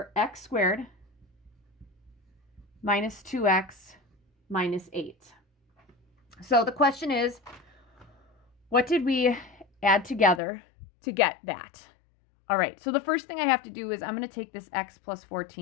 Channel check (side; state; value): right; drops out; at 10.4 s